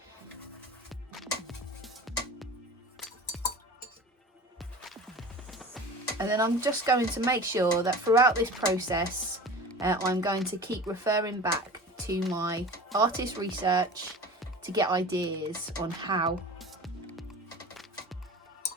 And then I'm just going to make sure that throughout this process, I'm going to keep referring back to my artist research to get ideas on how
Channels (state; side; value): normal; both; correlation 0.37